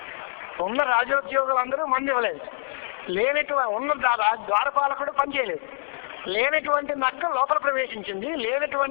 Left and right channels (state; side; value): silent; right; digital silence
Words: ఉన్న రాజోద్యోగులందరూ మంది ఇవ్వలేదు. ఉన్న ద్వారపాలకుడు పనిచేయలేదు. లేనటువంటి నక్క లోపల ప్రవేశించింది.